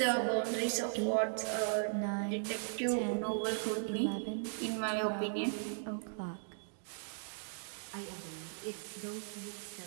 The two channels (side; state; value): left; silent; digital silence